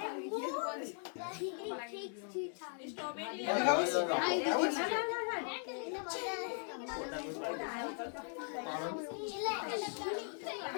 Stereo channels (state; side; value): silent; right; 52 dB below the other